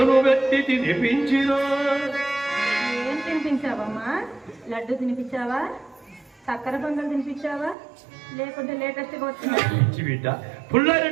పెట్టి తినిపించిన. ఏం తినిపించావమ్మా? లడ్డు తినిపించావా? చక్కెర పొంగల్ తినిపించావా? లేకుంటే లేటెస్ట్గా వచ్చిన పిచ్చి బిడ్డ,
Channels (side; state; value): left; drops out; at 7.8 s